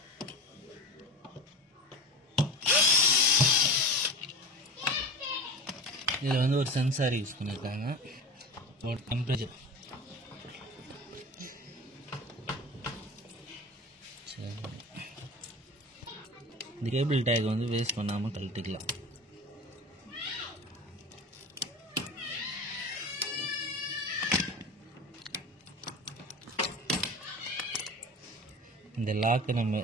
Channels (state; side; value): normal; both; correlation 0.31